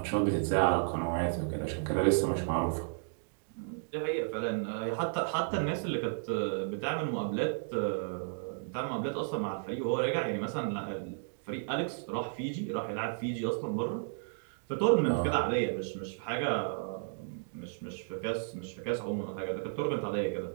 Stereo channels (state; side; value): silent; left; digital silence